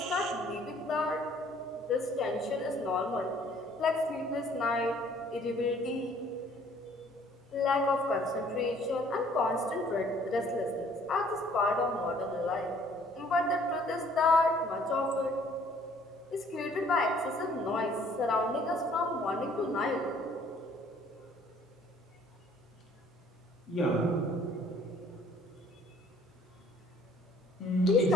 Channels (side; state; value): both; normal; correlation 0.58